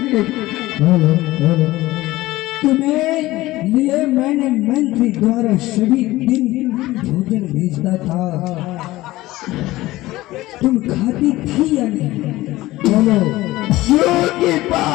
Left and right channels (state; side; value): quieter; right; 17.8 dB